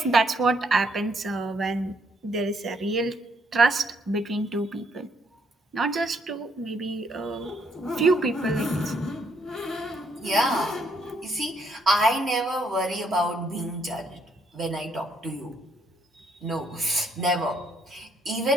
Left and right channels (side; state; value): both; normal; correlation 0.71